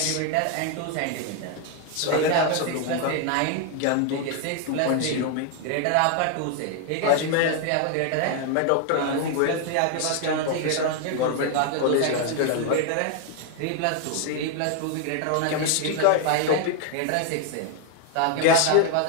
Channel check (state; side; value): different; both; correlation 0.00